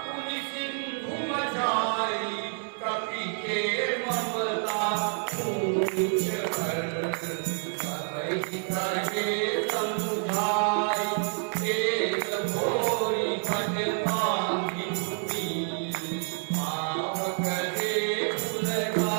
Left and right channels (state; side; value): silent; left; 59 dB below the other